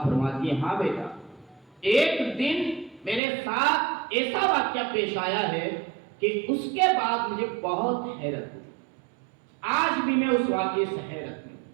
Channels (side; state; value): left; drops out; at 3.2 s